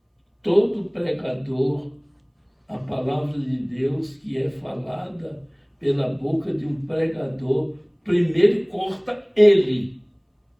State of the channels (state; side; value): identical; both; correlation 1.00